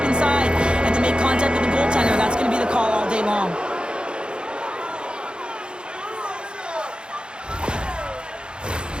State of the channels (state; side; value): late; left; 0.052 ms